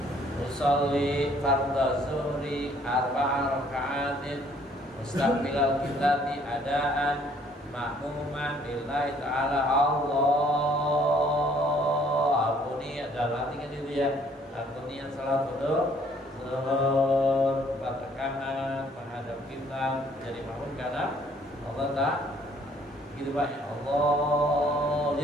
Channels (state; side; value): normal; both; correlation 0.61